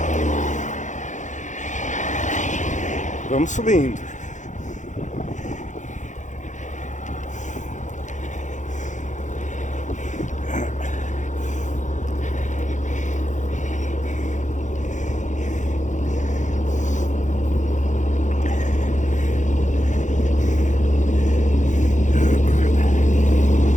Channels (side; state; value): right; late; 0.35 ms